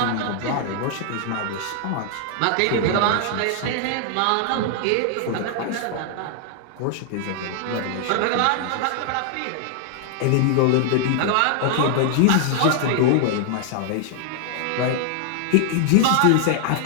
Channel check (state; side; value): different; both; correlation 0.00